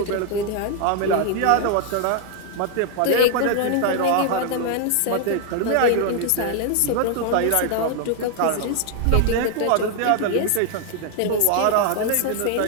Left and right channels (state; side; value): different; both; correlation 0.00